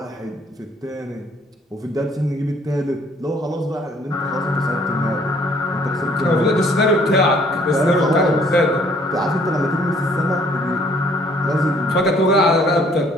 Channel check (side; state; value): both; normal; correlation 0.60